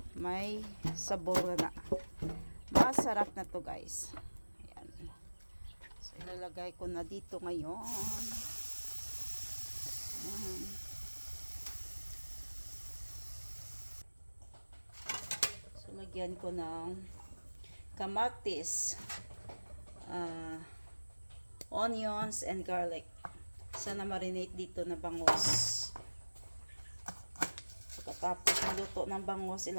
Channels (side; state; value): both; inverted; correlation -1.00